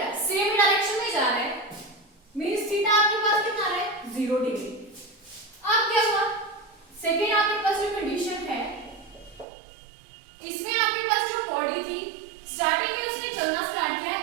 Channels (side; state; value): left; drops out; at 9.5 s